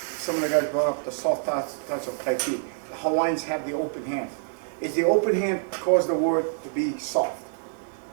of the guys brought up the soft touch of Tai Chi. The Hawaiians have the open hand. Is the open hand cause the word to be soft?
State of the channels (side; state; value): left; silent; 61 dB below the other